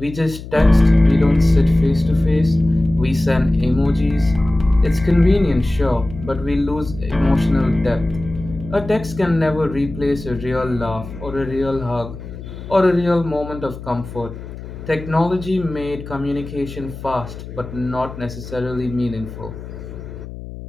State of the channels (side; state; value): left; noise; hum, 12 dB below the sound